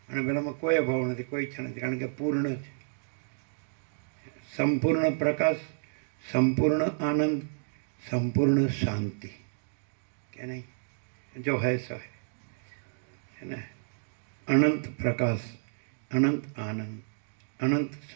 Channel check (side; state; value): left; silent; digital silence